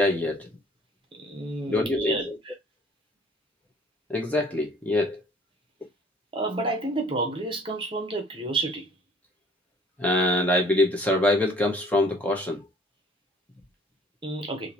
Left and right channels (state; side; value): normal; both; correlation 0.55